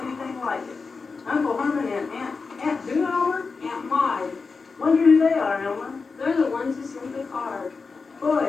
anything like it. Uncle Herman and Aunt who, Elmer? Aunt Maud. Wonder who they are, Elmer. They're the ones who sent the card. Boy,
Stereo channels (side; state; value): right; quieter; 4.6 dB